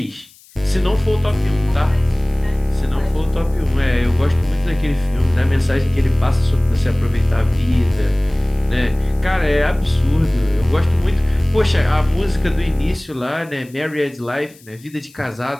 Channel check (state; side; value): noise; left; hiss, 26 dB below the sound